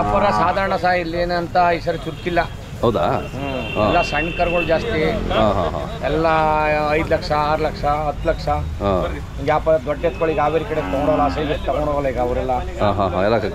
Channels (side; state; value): both; identical; correlation 1.00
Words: ಸಾಧಾರಣ ಇಲ್ಲಿ ಏನಂತ ಈ ಸರಿ ಚುರುಕಿಲ್ಲ. ಹೌದಾ? ಎಲ್ಲ ಸಣ್ಣ ಕರುಗಳು ಜಾಸ್ತಿ. ಎಲ್ಲ 5 ಲಕ್ಷ 6 ಲಕ್ಷ 10 ಲಕ್ಷ ವ್ಯಾಪಾರ. ದೊಡ್ಡ ಎತ್ಕೊಳ್ಳಿ ಹಾವೇರಿ ಕಡೆ ತಗೊಂಡೋಲ್ಲ, ಸೈಜ್ ತಗೊಂಡೋಗಲ್ಲ ಈಗ ಅವರೆಲ್ಲ.